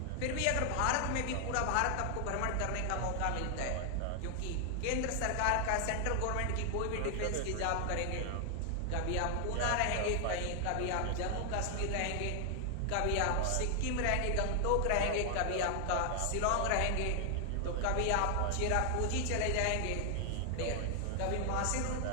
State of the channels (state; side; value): different; both; correlation 0.00